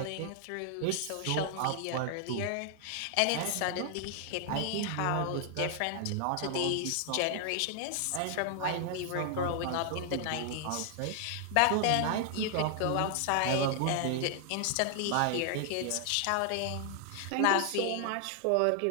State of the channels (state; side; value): different; both; correlation 0.00